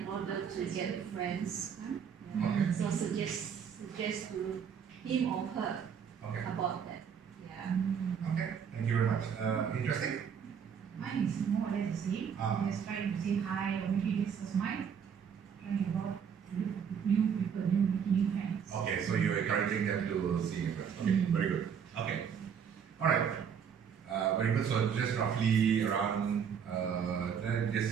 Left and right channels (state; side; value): quieter; left; 7.4 dB